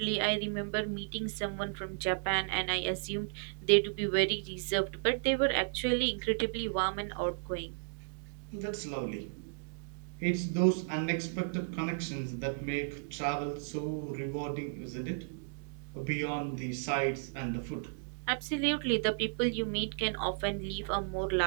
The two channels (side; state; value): left; silent; digital silence